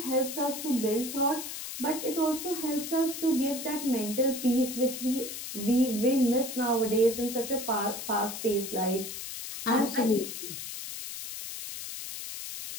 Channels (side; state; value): left; noise; hiss, 7 dB below the sound